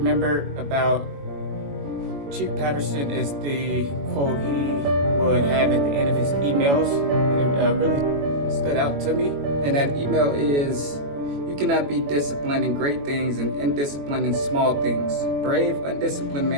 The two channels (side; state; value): left; late; 21 ms